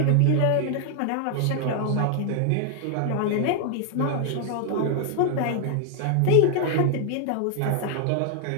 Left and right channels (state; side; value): different; both; correlation 0.00